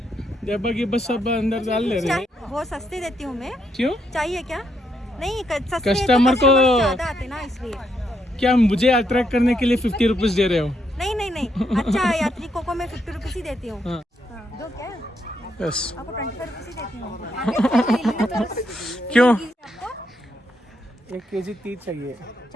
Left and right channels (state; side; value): normal; both; correlation 0.77